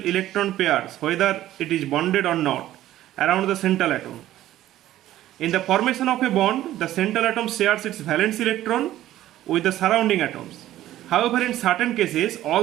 pairs, whether it is bonded or not, around the central atom. In the formation of a bond, the central atom shares its valence electron with the surrounding atoms. However, in certain cases,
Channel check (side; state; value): left; quieter; 13.9 dB